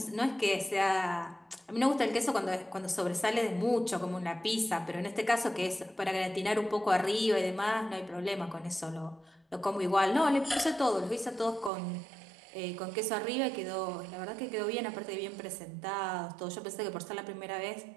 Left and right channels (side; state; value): left; drops out; at 11.7 s